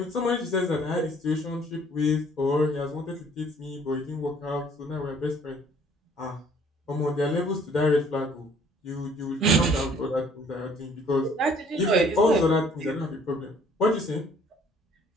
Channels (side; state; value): both; normal; correlation 0.58